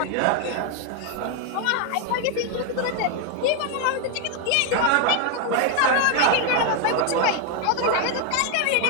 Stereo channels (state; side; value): different; both; correlation 0.01